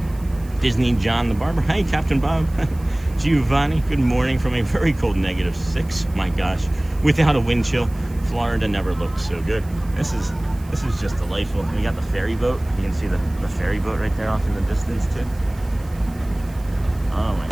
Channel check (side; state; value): right; noise; hiss, 25 dB below the sound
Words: Disney John the Barber. Hey, Captain Bob. Giovanni. Good morning from a very cold -6. My gosh. Without a wind chill, Florida never looked so good. This is just delightful. We got the ferry boat. You can see the ferry boat right there off in the distance too. Oh my